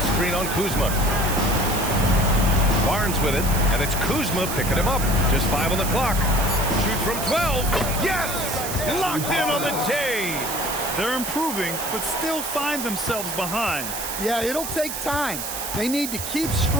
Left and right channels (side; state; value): right; noise; hiss, 5 dB below the sound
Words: screen on Kuzma. Barnes with it, and it's Kuzma picking him up. Just 5 on the clock. Shoots from 12. Yes! Locked in on the J. They're improving, but still find themselves behind. Yeah, it'll take time. They need to keep